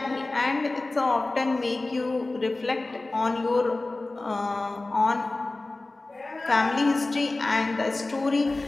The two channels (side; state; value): right; quieter; 3.1 dB